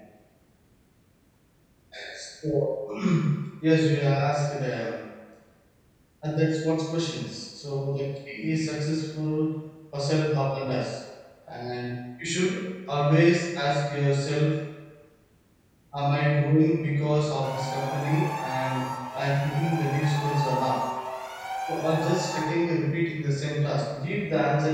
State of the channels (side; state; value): both; identical; correlation 1.00